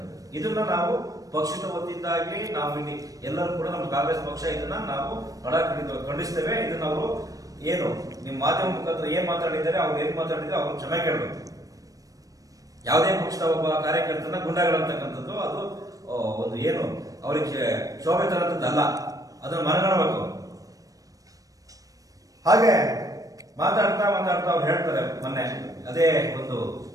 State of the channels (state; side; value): late; left; 0.17 ms